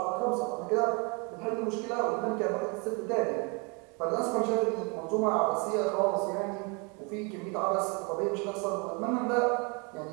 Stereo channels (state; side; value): quieter; left; 32.0 dB